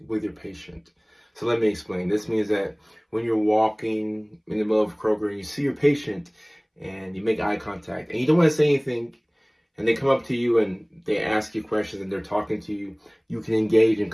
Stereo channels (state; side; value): identical; both; correlation 1.00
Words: with your patient. So let me explain. This means that when you're walking in the middle of Kroger and you see your patient and you make eye contact and you don't want to say anything, and they come up to you and they ask you questions and they're talking to you, you can engage in